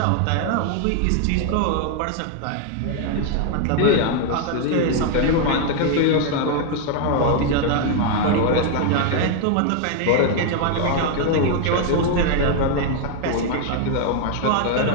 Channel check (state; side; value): different; both; correlation 0.00